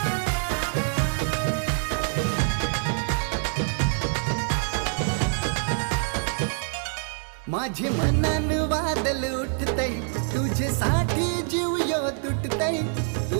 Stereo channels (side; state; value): left; silent; 58 dB below the other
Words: माझे मनान वादल उठतय तुझ्यासाठी जीव यो तुटतय।